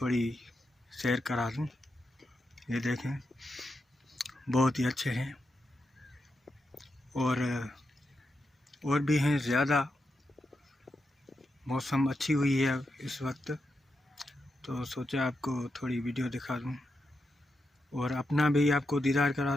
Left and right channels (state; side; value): normal; both; correlation 0.86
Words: शेयर करा दूं। ये देखें, बहुत ही अच्छे हैं और भी हैं ज़्यादा। मौसम अच्छी हुई है इस वक्त, तो सोचा आपको थोड़ी वीडियो दिखा दूं और अपना भी आपको दीदार करा